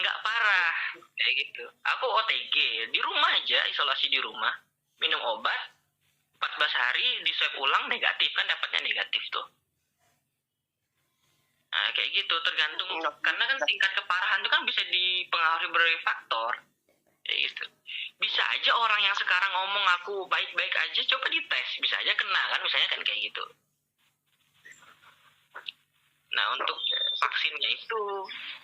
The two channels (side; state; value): both; identical; correlation 1.00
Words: nggak parah kayak gitu. Aku OTG di rumah aja, isolasi di rumah, minum obat 14 hari, di swab ulang negatif kan, dapatnya negatif tuh. Nah kayak gitu, tergantung karena kan tingkat keparahan itu kan bisa dipengaruhi berbagai faktor. Kayak gitu. Bisa aja orang yang sekarang ngomong aku baik-baik aja, coba dites, bisa aja kena kan, misalnya kan kayak gitu. Nah untuk vaksinnya itu